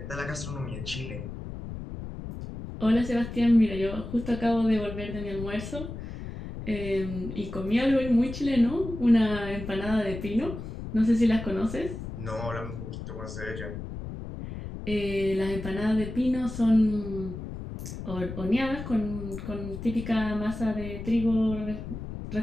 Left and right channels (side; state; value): left; noise; rumble, 9 dB below the sound